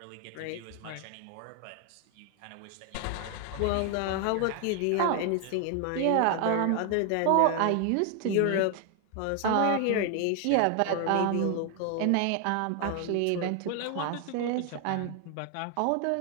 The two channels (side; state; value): both; different; correlation 0.00